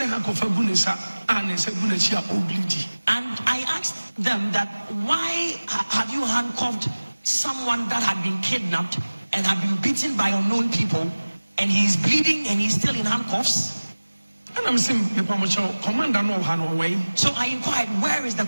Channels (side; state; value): both; inverted; correlation -1.00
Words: I asked them that, why have you handcuffed someone that had been kidnapped and had been beaten by unknown people, and he's bleeding and he's still in handcuffs? And I'm saying, commander no way. So I inquired, where is the